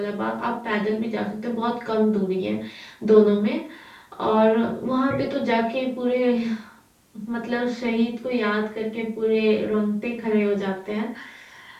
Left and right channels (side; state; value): both; identical; correlation 1.00